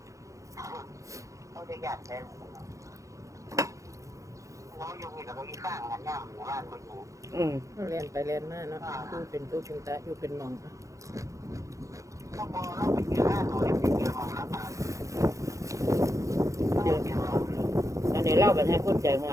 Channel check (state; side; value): late; left; 0.15 ms